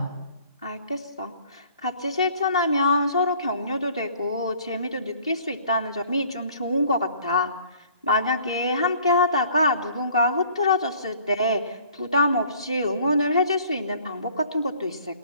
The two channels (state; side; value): inverted; both; correlation -0.55